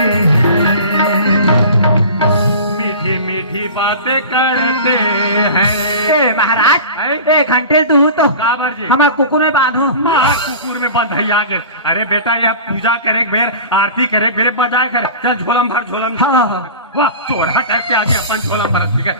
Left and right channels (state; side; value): inverted; both; correlation -0.36